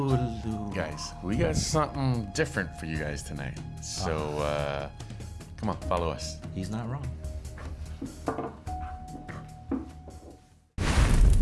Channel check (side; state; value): both; identical; correlation 1.00